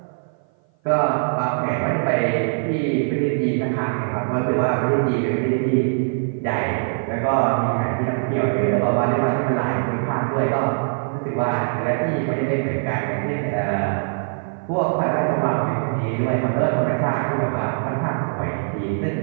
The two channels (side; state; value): left; silent; 57 dB below the other